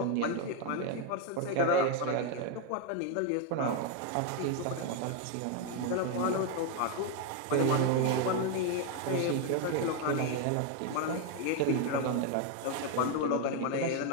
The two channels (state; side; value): different; both; correlation 0.01